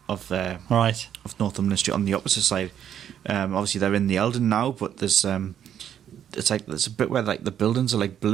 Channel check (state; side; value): quieter; left; 9.6 dB